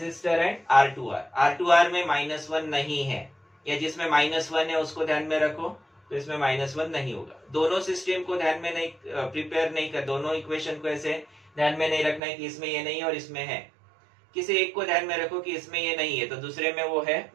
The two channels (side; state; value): left; drops out; at 12.2 s